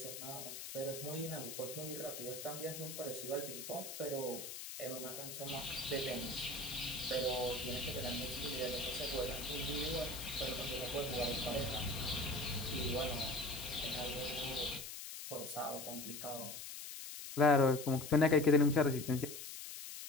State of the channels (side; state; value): left; noise; hiss, 9 dB below the sound